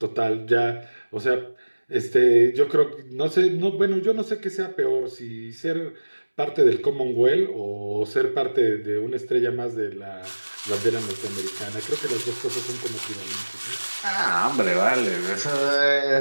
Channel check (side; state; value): both; inverted; correlation -1.00